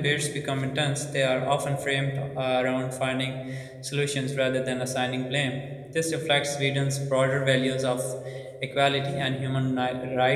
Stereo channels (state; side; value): identical; both; correlation 1.00